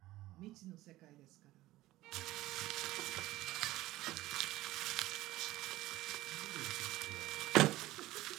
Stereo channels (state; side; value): quieter; left; 16.9 dB